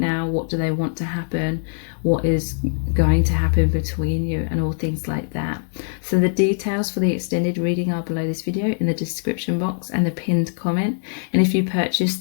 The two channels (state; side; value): silent; right; digital silence